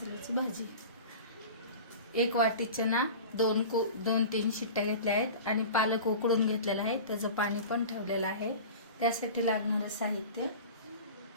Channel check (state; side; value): inverted; both; correlation -0.36